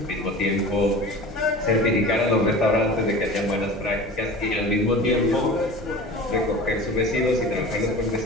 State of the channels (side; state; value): both; normal; correlation 0.37